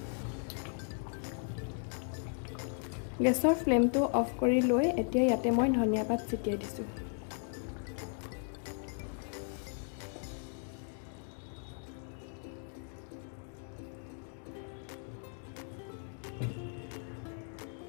গেছৰ ফ্লেমটো অফ কৰি লৈ এতিয়া ইয়াতে মই ধনিয়া পাত ছটিয়াই দিছোঁ।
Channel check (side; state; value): right; silent; 54 dB below the other